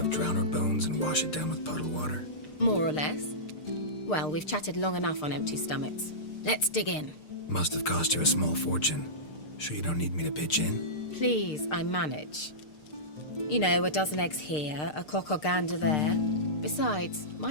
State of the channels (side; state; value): right; late; 6.6 ms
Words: drowner bones and wash it down with puddle water? More or less. Well, we've chatted long enough on empty stomachs. Let's dig in. Must have cost you a small fortune. Sure you don't need me to pitch in? Please, I manage. You know, a dozen eggs here, a cock or gander there. Besides,